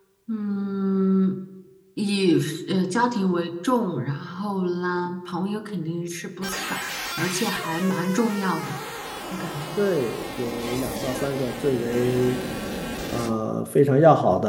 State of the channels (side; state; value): both; identical; correlation 1.00